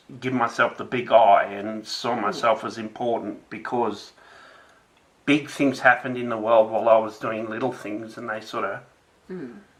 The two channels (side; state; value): both; identical; correlation 1.00